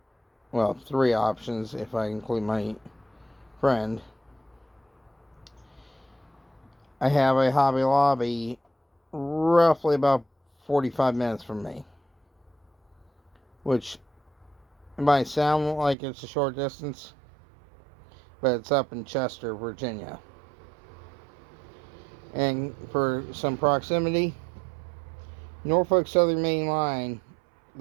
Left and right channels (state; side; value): drops out; left; at 16.0 s